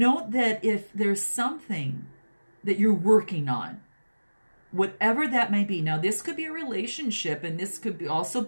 that if there's something that you're working on, whatever that may be. Now, this could be a relationship, and this could also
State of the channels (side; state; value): both; inverted; correlation -1.00